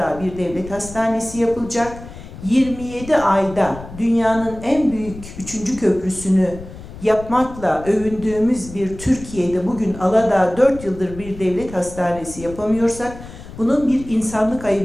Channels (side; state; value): left; noise; rumble, 15 dB below the sound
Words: bir devlet hastanesi yapılacak. 27 ayda dünyanın en büyük 3. köprüsünü yapmakla övündüğümüz bir Türkiye'de bugün Aladağ 4 yıldır bir devlet hastanesi yapamıyorsak bunun bir insanlık